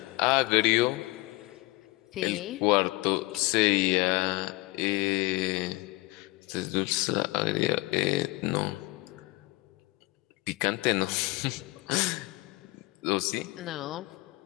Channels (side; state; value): right; quieter; 21.4 dB